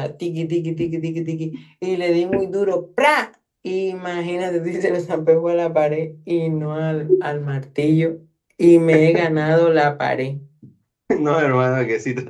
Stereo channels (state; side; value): identical; both; correlation 1.00